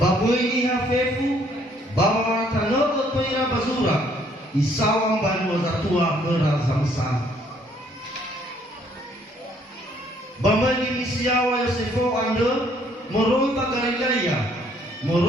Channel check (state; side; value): normal; both; correlation 0.65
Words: Baboi niha fefu bawa tanogo toira bazura isawang banu zatua merazamsa. Bamani misiawa Yosefo ande moroi pa Galilea